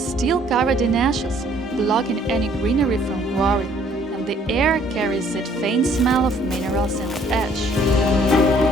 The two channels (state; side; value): normal; both; correlation 0.61